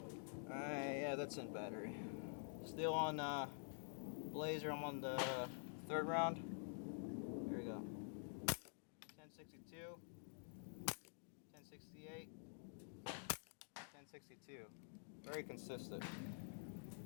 Yeah, that's in battery. Still on Blazer. I'm on the third round. Here we go. 1062, 1068, 1062. Very consistent.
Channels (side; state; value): right; silent; digital silence